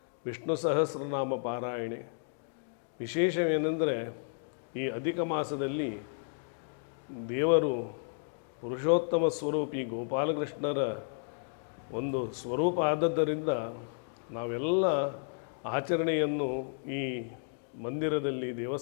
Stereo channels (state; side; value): silent; right; digital silence